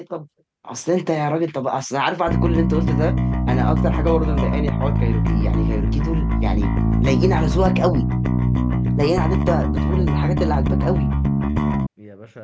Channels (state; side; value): identical; both; correlation 1.00